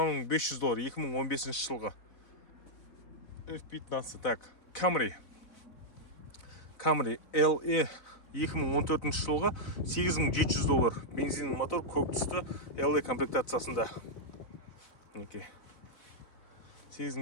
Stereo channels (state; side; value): late; right; 4.0 ms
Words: 500 доллар 2015 жылғы. F15. Так, Camry LE 2014 жылғы 8700 доллар. Бензин мотор, көк түсті LE комплектациясында.